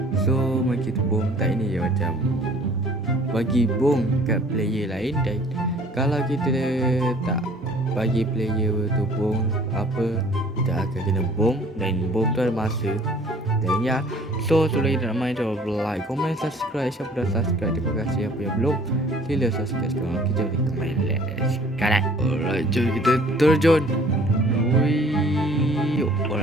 So Maki Bom Tak ni dia macam bagi bom kat player lain, dan kalau kita tak bagi player tu bom apa, kita akan kena bom, dan bom tu ada masa. Dan ya, so sebelum kita nak main, jangan lupa like, komen, subscribe. Siapa dah subscribe, terima kasih. Apa yang belum, sila subscribe sekarang. Kita boleh main sekarang. Alright, jom kita terjun. Wih,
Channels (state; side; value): normal; both; correlation 0.54